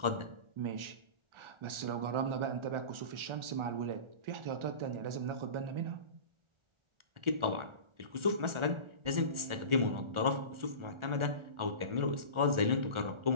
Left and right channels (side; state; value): left; late; 1.4 ms